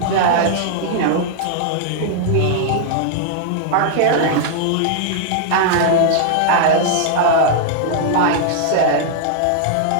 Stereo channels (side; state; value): both; different; correlation -0.01